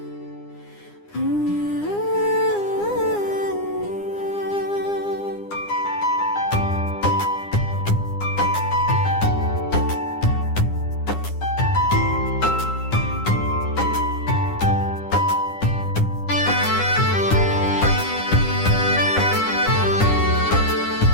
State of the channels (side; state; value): right; late; 9.8 ms